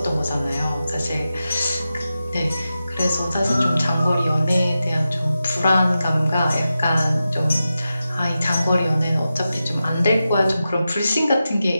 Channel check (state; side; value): inverted; both; correlation -0.91